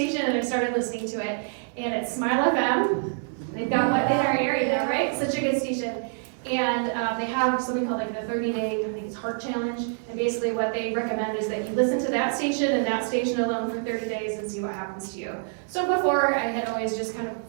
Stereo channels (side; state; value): left; silent; 61 dB below the other